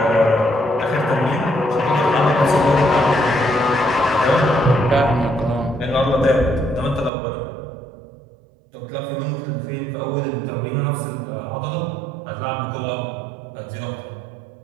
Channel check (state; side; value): drops out; left; at 7.1 s